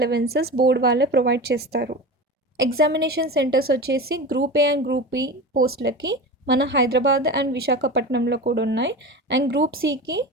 board వాళ్ళే provide చేస్తారు. Examination centres వచ్చేసి group A and group B పోస్టులకి మన Hyderabad and విశాఖపట్నంలో కూడా ఉన్నాయి. అండ్ గ్రూప్ సికి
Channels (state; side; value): normal; both; correlation 0.29